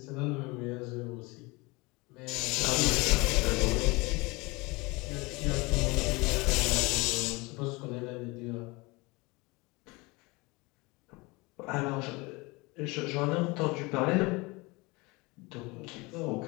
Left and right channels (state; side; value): quieter; right; 25.1 dB